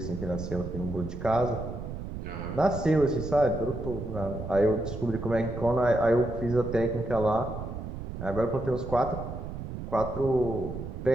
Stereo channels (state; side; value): noise; right; rumble, 8 dB below the sound